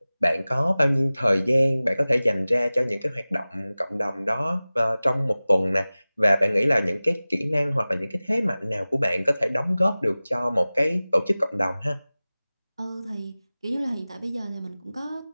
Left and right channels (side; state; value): both; inverted; correlation -0.98